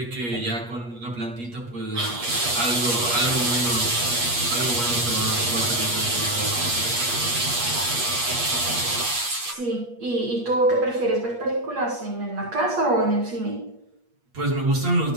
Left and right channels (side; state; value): left; late; 8.4 ms